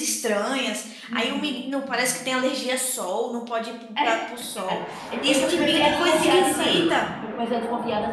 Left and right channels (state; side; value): identical; both; correlation 1.00